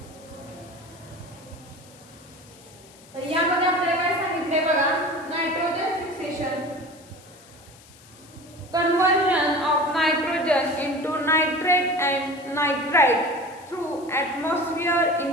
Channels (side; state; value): left; noise; hiss, 24 dB below the sound